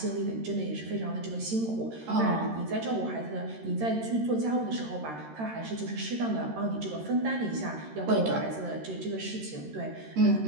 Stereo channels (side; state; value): left; late; 13 ms